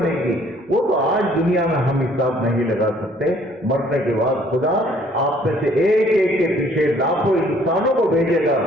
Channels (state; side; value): normal; both; correlation 0.60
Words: گی، وہ تو آج دنیا میں ہم حساب نہیں لگا سکتے۔ مرنے کے بعد خدا آپ میں سے ایک ایک کے پیچھے لاکھوں انسانوں کو بھیجے گا،